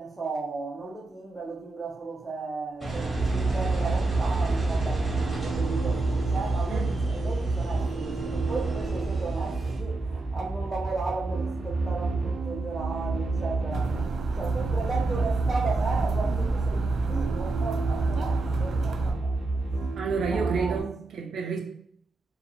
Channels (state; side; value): quieter; left; 3.1 dB